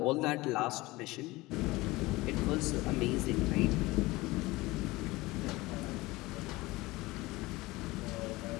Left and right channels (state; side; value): quieter; right; 20.7 dB